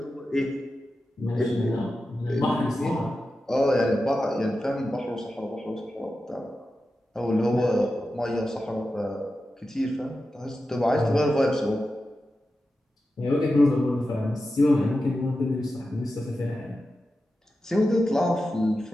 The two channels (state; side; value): normal; both; correlation 0.91